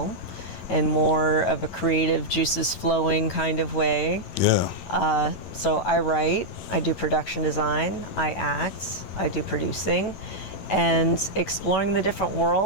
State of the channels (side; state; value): right; late; 11 ms